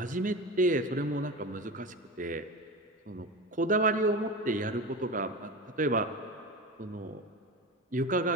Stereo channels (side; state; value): both; normal; correlation 0.26